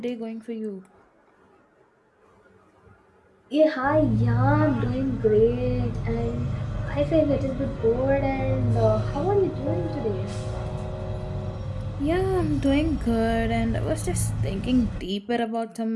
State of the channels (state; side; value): identical; both; correlation 1.00